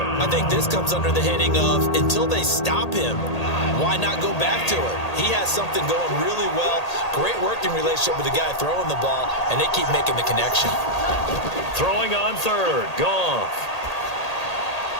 I think this comes under the heading of until they stop him, why not go back to it? He has something going really well. Great working relationship with the guy throwing the ball, and they keep making the connection. Throwing on third. Goff.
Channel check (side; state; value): right; late; 1.8 ms